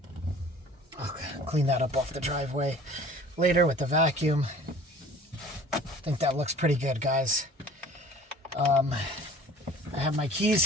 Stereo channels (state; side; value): normal; both; correlation 0.47